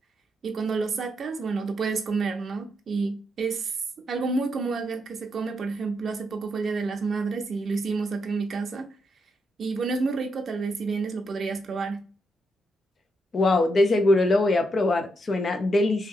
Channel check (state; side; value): normal; both; correlation 0.81